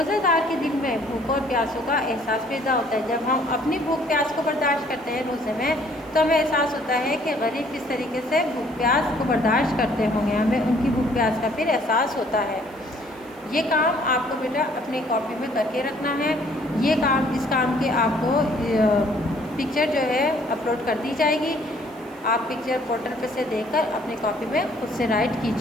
دار کے دل میں بھوک اور پیاسوں کا احساس پیدا ہوتا ہے۔ جب ہم اپنی بھوک پیاس کو برداشت کرتے ہیں روزے میں، تو ہمیں احساس ہوتا ہے کہ غریب کس طریقے سے بھوک پیاس کو برداشت کرتے ہوں گے، ہمیں ان کی بھوک پیاس کا پھر احساس ہوتا ہے۔ یہ کام آپ کو بیٹا اپنی کاپی میں کر کے رکھنا ہے۔ یہ کام اس کام کے آپ کو پکچر جو ہے اپلوڈ کر دی جائے گی، آپ پکچر پورٹل پہ سے دیکھ کر اپنی کاپی میں خود سے رائٹ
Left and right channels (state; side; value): noise; right; hiss, 28 dB below the sound